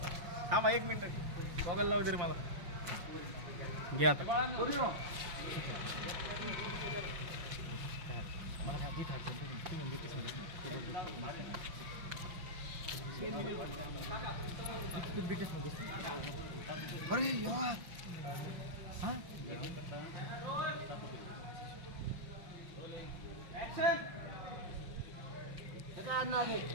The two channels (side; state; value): left; late; 5.8 ms